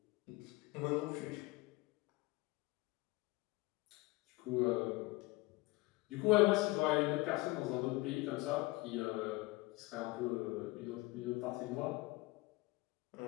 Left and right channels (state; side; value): quieter; right; 22.3 dB